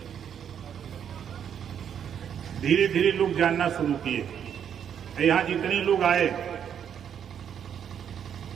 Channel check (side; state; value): left; quieter; 8.6 dB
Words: धीरे धीरे लोग जानना शुरू किए। यहां जितने लोग आए,